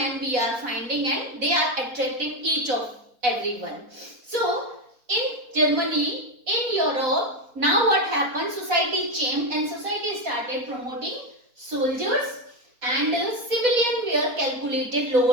we are finding, and they are attracting each of everyone. So in Germany, in Europe, now what happened? Society changed and society started promoting soldiers, and civilian were calculated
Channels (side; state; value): left; late; 4.1 ms